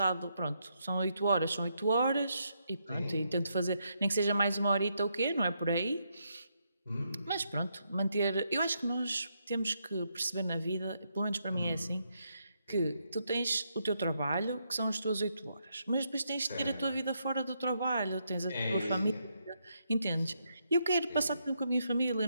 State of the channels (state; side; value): inverted; both; correlation -0.79